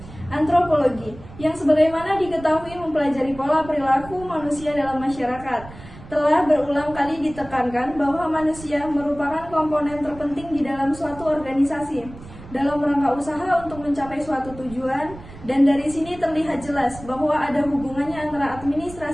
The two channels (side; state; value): right; noise; rumble, 17 dB below the sound